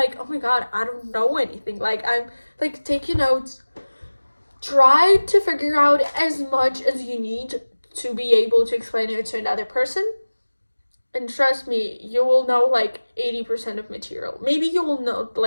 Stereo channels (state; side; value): inverted; both; correlation -1.00